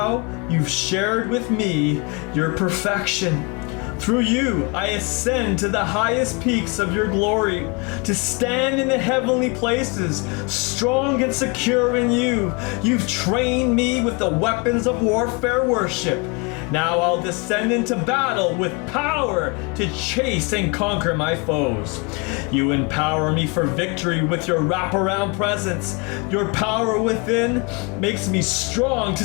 you've shared with me your perfection. Through you, I ascend to the highest peaks of your glory, to stand in the heavenly places, strong and secure in you. You've trained me with the weapons of warfare worship. Now I'll descend into battle with power to chase and conquer my foes. You empower me for victory with your wraparound presence. Your power within makes me strong to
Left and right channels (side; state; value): right; quieter; 30.4 dB